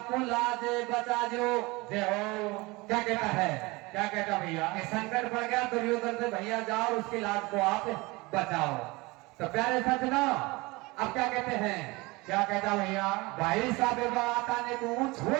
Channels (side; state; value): left; quieter; 23.7 dB